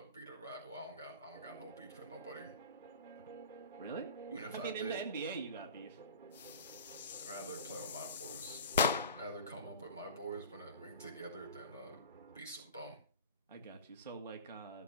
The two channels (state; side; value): inverted; both; correlation -0.37